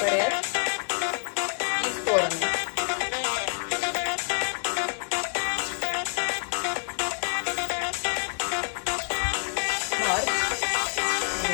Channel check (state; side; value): silent; right; digital silence